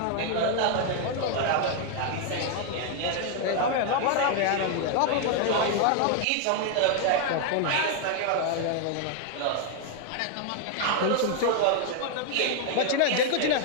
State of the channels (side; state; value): both; different; correlation 0.00